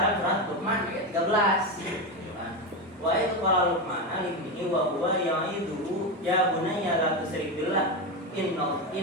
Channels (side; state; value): both; normal; correlation 0.14